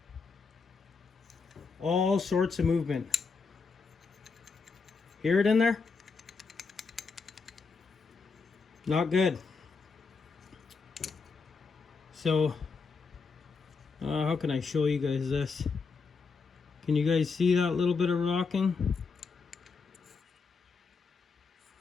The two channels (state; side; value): quieter; right; 4.8 dB